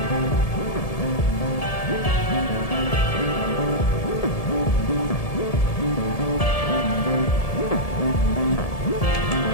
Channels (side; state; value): right; late; 1.7 ms